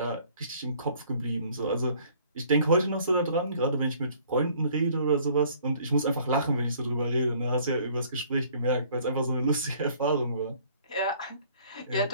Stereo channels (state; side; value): inverted; both; correlation -0.57